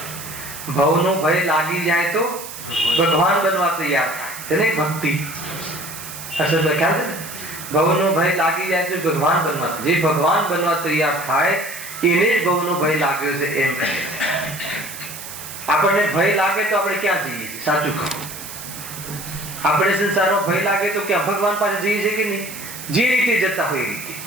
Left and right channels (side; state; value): right; noise; hiss, 11 dB below the sound